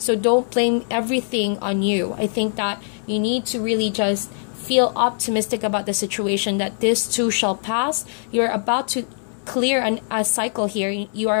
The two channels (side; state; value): right; silent; 64 dB below the other